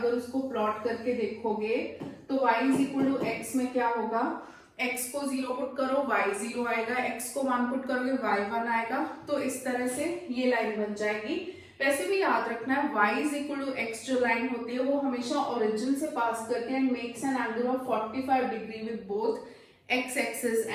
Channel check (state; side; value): identical; both; correlation 1.00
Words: उसको प्लॉट करके देखोगे तो y is equal to x में क्या होगा, x को 0 पुट करो y 0 आएगा, x को 1 पुट करोगे y 1 आएगा। तो इस तरह से ये लाइन बन जाएगी। वैसे भी याद रखना है y is equal to x जो लाइन होती है वो हमेशा ओरिजिन से पास करके and makes an angle of 45 degree with both x axis